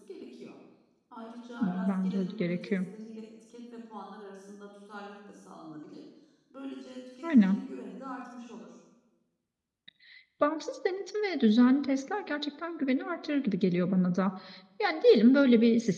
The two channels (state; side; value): identical; both; correlation 1.00